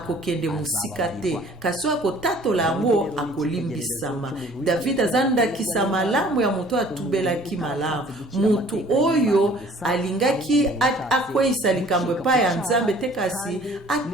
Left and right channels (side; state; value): both; normal; correlation 0.53